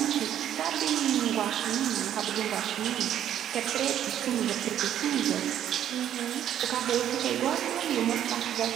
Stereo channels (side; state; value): left; quieter; 10.6 dB